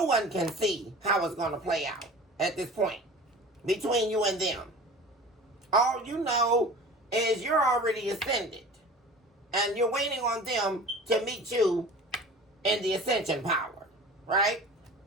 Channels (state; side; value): normal; both; correlation 0.40